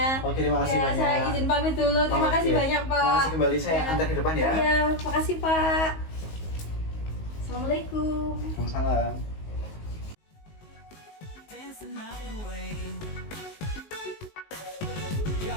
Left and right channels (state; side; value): late; right; 19 ms